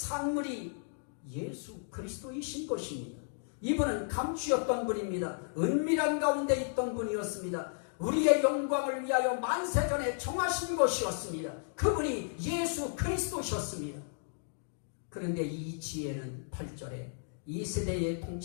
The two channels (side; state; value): right; silent; digital silence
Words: 예수 그리스도이신 것입니다. 이분은 감추었던 분입니다. 은밀한 가운데 있던 분이었습니다. 우리의 영광을 위하여 만세전에 정하신 것이었습니다. 그분이 예수 그리스도셨습니다. 그런데 이 지혜는 8절에 이 세대의